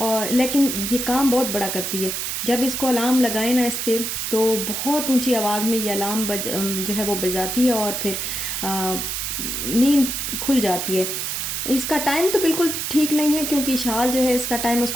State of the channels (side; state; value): right; noise; hiss, 3 dB below the sound